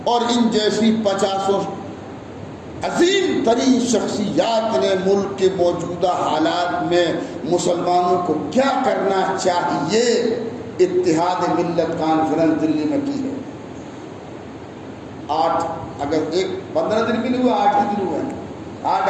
اور ان جیسی 50 عظیم ترین شخصیات نے ملک کے موجودہ حالات میں مسلمانوں کو کیا کرنا چاہیے اتحاد ملت کانفرنس دلی میں کی ہے۔ 8 اگست 15 دن بھی نہیں ہوا، 8 ہی دن ہوئے، 8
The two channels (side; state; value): both; identical; correlation 1.00